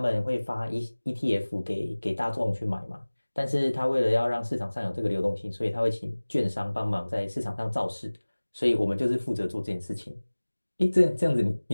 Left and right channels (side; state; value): both; inverted; correlation -1.00